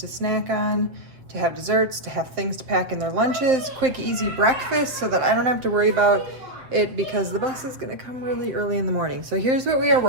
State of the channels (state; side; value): late; left; 7.8 ms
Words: snack on, to have desserts, to have things to pack in their lunches, quick, easy breakfast, so that I don't have to worry about it because the bus is gonna come really early in the morning. So here's what we are